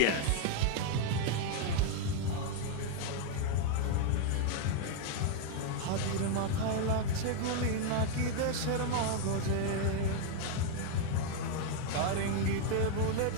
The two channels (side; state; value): both; different; correlation 0.00